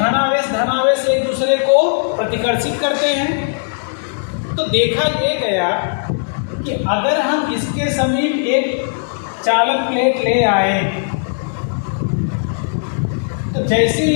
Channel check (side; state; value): right; silent; digital silence